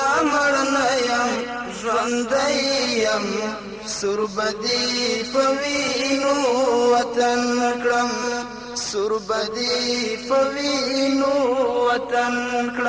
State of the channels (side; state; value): both; identical; correlation 1.00